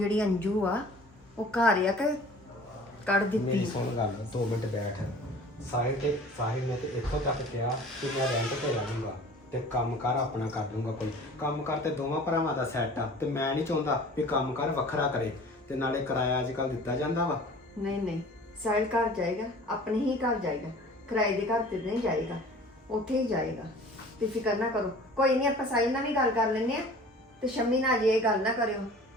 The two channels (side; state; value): both; normal; correlation 0.45